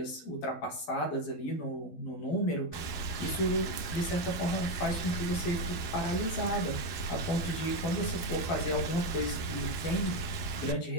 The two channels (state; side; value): late; right; 12 ms